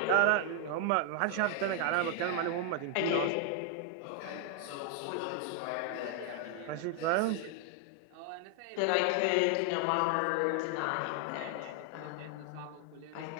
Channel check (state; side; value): different; both; correlation 0.00